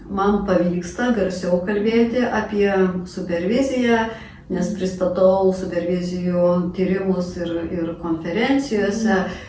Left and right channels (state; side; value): identical; both; correlation 1.00